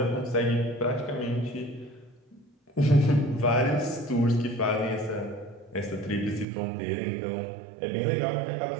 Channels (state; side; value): drops out; left; at 6.5 s